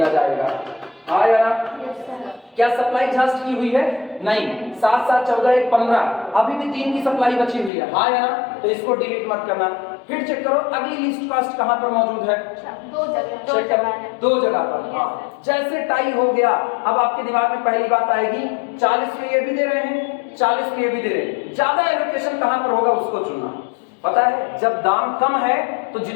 जाएगा। हाँ या ना? क्या सप्लाई एग्जॉस्ट की हुई है? नहीं। 7 7 14 1 15, अभी भी 3 की सप्लाई बची हुई है। हाँ या ना? तो इसको डिलीट मत करना। फिर चेक करो अगली लिस्ट कॉस्ट कहां पर मौजूद है? 2 जगह पर। हाँ, जैसे टाई हो गया, अब आपके दिमाग में पहली बात आएगी 40 में ये भी दे रहे हैं, 40 में ये भी दे रहे हैं, ज्यादा एलोकेशन कहां पर होगा उसको चुनना। पता है जब दाम कम है तो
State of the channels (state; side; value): drops out; right; at 7.7 s